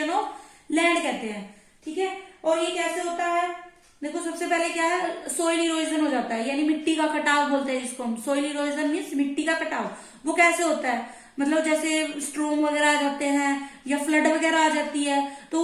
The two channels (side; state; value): both; identical; correlation 1.00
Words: ऑफ लैंड कहते हैं, ठीक है। और ये कैसे होता है, देखो सबसे पहले क्या है, सोइल इरोजन हो जाता है, यानी मिट्टी का कटाव बोलते हैं जिसको हम, सोइल इरोजन मीन्स मिट्टी का कटाव। वो कैसे होता है, मतलब जैसे स्ट्रोम वगैरह आ जाते हैं या फ्लड वगैरह आ जाती है, तो